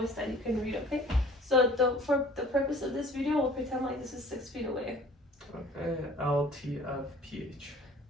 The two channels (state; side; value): normal; both; correlation 0.49